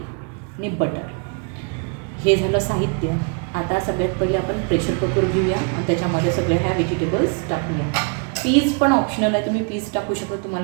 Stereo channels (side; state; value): left; quieter; 37.0 dB